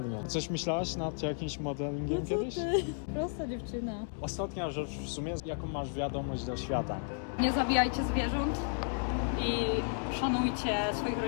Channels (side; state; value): right; silent; 56 dB below the other